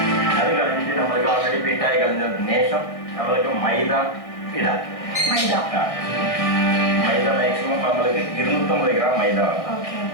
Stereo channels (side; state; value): right; late; 1.6 ms